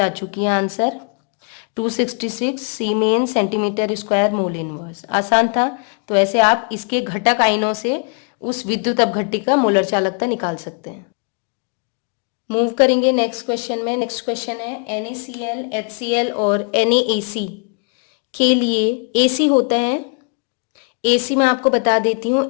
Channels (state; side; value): quieter; right; 39.0 dB